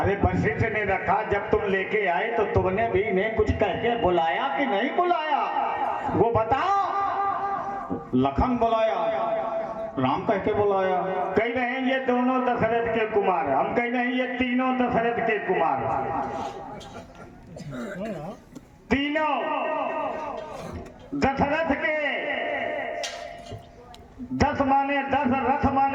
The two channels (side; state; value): both; identical; correlation 1.00